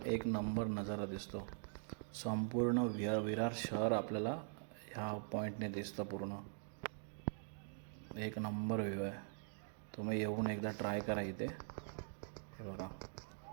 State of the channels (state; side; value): silent; left; digital silence